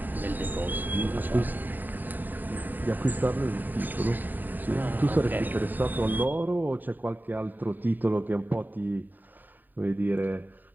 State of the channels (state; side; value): late; left; 0.089 ms